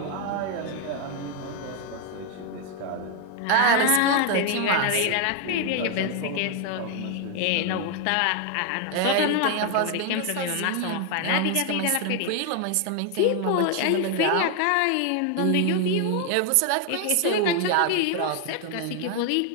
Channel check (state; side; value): different; both; correlation 0.00